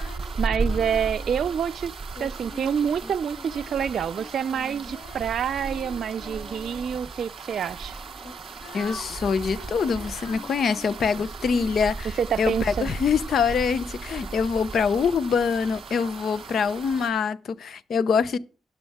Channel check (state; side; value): normal; both; correlation 0.73